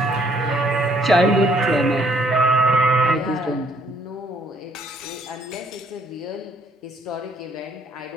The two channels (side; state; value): both; normal; correlation 0.65